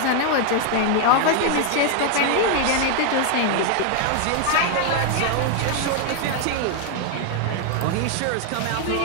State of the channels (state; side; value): different; both; correlation 0.01